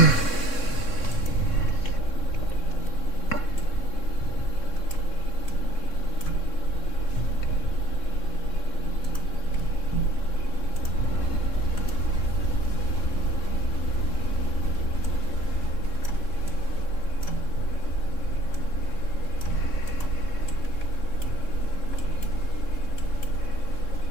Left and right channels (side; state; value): right; late; 3.6 ms